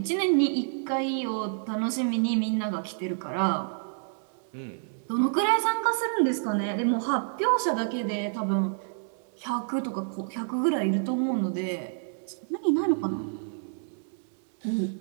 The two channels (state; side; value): silent; left; digital silence